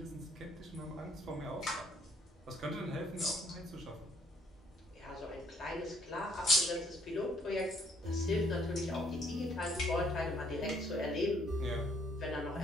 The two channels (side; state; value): both; normal; correlation 0.64